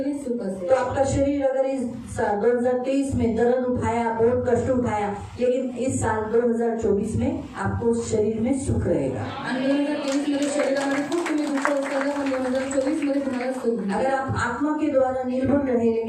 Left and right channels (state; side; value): identical; both; correlation 1.00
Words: सुख असेल. तो आपका शरीर अगर इस 2023 में दर्द उठाया, बहुत कष्ट उठाया, लेकिन इस साल 2024 में आपको शरीर में सुख रहेगा। आणि 2023 मध्ये शरीरामध्ये खूप तुम्ही दुःख उचललं पण 2024 मध्ये तुम्हाला सुख मिळेल. अगर आप आत्मा के द्वारा निर्भर रहे,